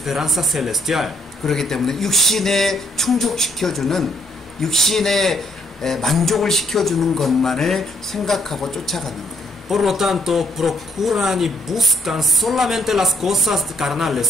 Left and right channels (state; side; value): normal; both; correlation 0.71